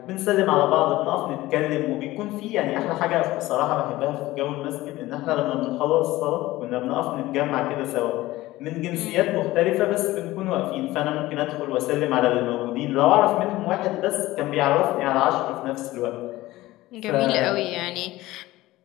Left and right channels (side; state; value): right; quieter; 17.6 dB